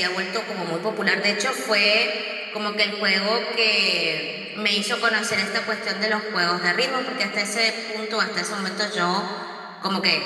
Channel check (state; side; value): identical; both; correlation 1.00